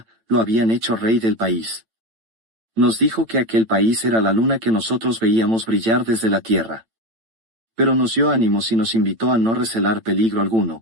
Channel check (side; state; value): left; late; 8.9 ms